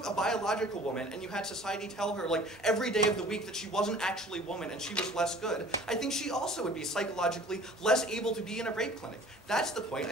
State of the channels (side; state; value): both; normal; correlation 0.48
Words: a biological woman and you had society tell her like every day of the week that she wasn't actually a woman and she was less good, I think she also would be psychologically less able to be in a rape clinic. That's the point.